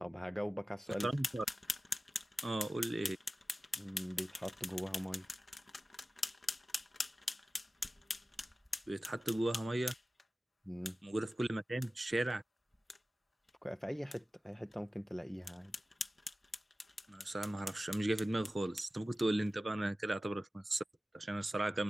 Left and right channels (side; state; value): both; normal; correlation 0.96